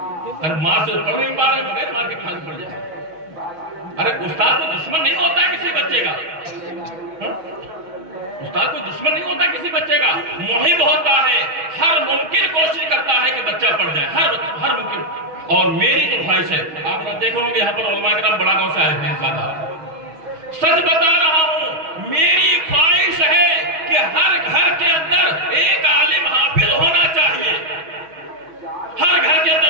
ارے ماں سے پڑھ نہیں پا رہے بغیر مار کے پھانسی پڑ جائے۔ ارے استاد کو دشمن نہیں ہوتا ہے کسی بچے کا، استاد کو دشمن نہیں ہوتا کسی بچے کا، محب ہوتا ہے، ہر ممکن کوشش کرتا ہے کہ بچہ پڑھ جائے، ہر ممکن۔ اور میری تو خواہش ہے، آپ دیکھ رہے ہوں گے یہاں پر علماء کرام بڑا گاؤں سے آئے ہیں زیادہ، سچ بتا رہا ہوں، میری خواہش ہے کہ ہر گھر کے اندر ایک عالم حافظ ہونا چاہیے، ہر گھر کے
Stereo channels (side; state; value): left; late; 6.2 ms